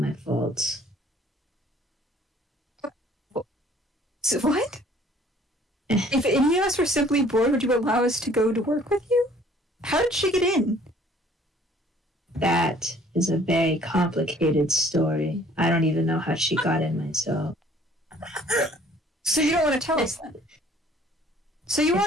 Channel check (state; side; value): normal; both; correlation 0.56